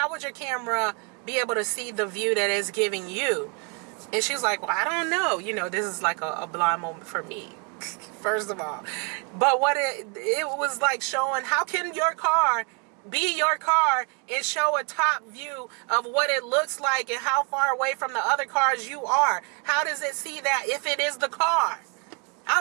would your camera be able to see the view that it's giving you? And she's like, well, I don't know. This is like a blind moment for me, first of all. But what it was like showing, how can your car be your car and show a top view of what it looks like and how far away from the other cars you are? How does it see that if it is the car? I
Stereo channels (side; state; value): left; quieter; 34.1 dB